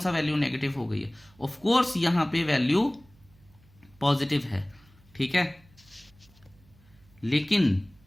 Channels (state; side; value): noise; right; hum, 29 dB below the sound